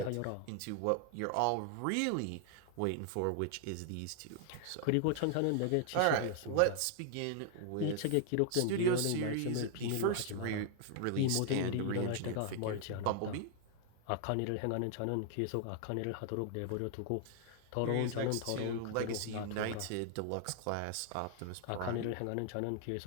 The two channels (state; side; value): different; both; correlation 0.00